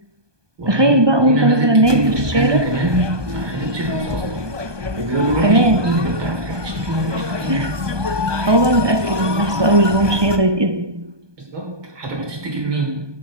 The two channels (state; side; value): late; left; 1.2 ms